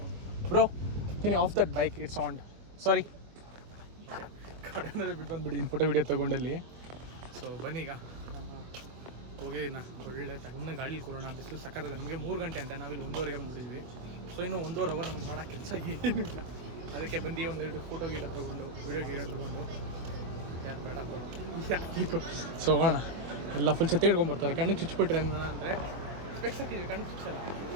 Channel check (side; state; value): left; late; 24 ms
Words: Bro can you off that bike, it's on. Sorry, ಗಾಡಿ ಅನ್ನೋದೇ ಬಿಟ್ಟು ಬಂದುಬಿಟ್ಟಿದ್ದೀನಿ ಫೋಟೋ ವೀಡಿಯೋ ತೊಗೊಂಡಲ್ಲಿ. ಸೊ ಬನ್ನೀಗ ಹೋಗಿ ಒಳ್ಳೆ ತಣ್ಣ ಗಾಡಿ ಕೂರೋಣ. ಬಿಸಿಲು ಸಕ್ಕತ್ತದೆ. ನಮಗೆ 3 ಗಂಟೆ ಅಂತ, ನಾವಿಲ್ಲಿ 1:30ಗೆ ಬಂದುಬಿಟ್ಟಿದ್ವಿ. ಸೊ ಇನ್ನೂ 1.5 ಅವರ್ ನಮ್ಗೆ ಮಾಡೋ ಕೆಲಸ ಏನೂ ಇಲ್ಲ. ಅದಕ್ಕೆ ಬಂದು ಒಂದೆರಡು ಫೋಟೋ ಗೀಟ ತೊಗೊಂಡು ವೀಡಿಯೋ ತೊಗೊಂಡು ಯಾರು ಬೇಡ ಯಾಕೆ ಸೊ ಹೋಗೋಣ. ಎಲ್ಲ ಫುಲ್ ಛತ್ತಿ ಹಿಡ್ಕೊಂಡ್ಬರ್ತಾರೆ, ಕಣ್ಣಿಗೆ ಚುಚ್ಚಿಬಿಟ್ರೆ ಅಂದರೆ ಸ್ಪೆಕ್ಸ್ ಹಾಕಿದ್ವಿ, ಕಣ್ಣಿಗೆ ಚುಚ್ಚಲ್ಲ.